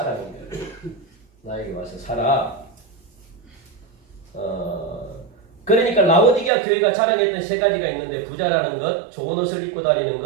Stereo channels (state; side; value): drops out; left; at 6.5 s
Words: 거예요. 나에게 와서 사라. 그러니까 라오디게아 교회가 자랑했던 세 가지가 있는데 부자라는 것, 좋은 옷을 입고 다니는